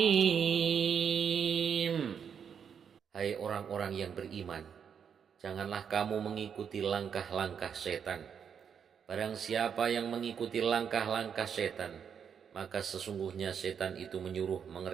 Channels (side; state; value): left; quieter; 7.4 dB